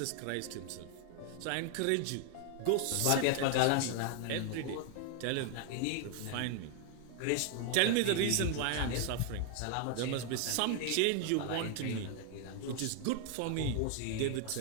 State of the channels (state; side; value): different; both; correlation 0.01